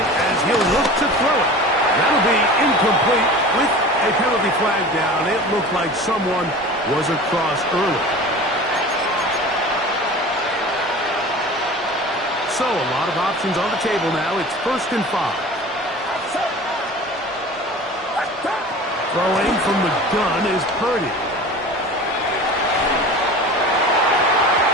as he'll look to throw it. That'll be incomplete with a penalty flag down. It looked like someone was across early. So a lot of options on the table now. It's first and 5. Throwing from the gun is Purdy.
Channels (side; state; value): both; normal; correlation 0.37